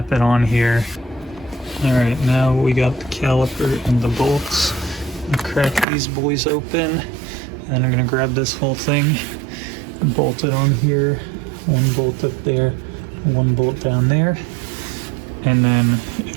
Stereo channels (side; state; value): left; drops out; at 5.9 s